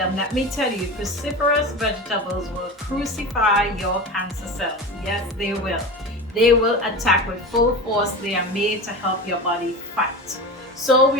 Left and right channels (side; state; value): both; normal; correlation 0.28